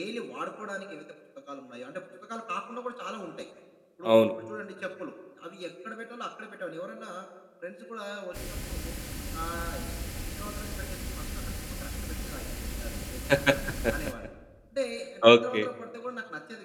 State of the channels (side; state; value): both; identical; correlation 1.00